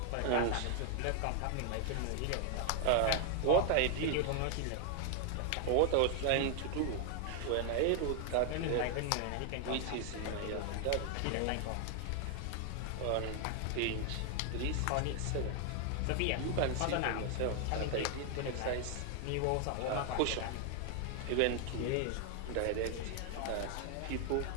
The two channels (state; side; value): different; both; correlation 0.00